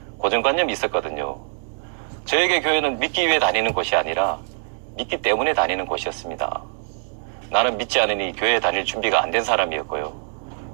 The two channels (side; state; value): left; silent; digital silence